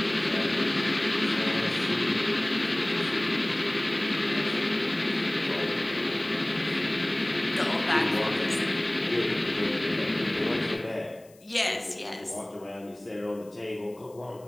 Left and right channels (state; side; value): noise; left; hiss, 28 dB below the sound